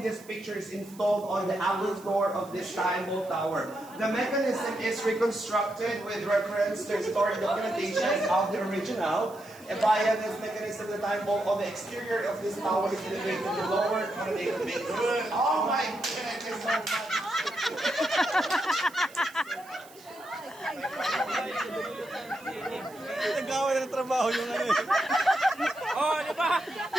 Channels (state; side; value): noise; right; hiss, 23 dB below the sound